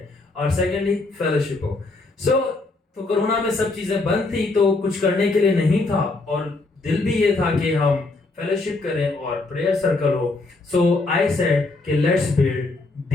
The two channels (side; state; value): right; quieter; 3.3 dB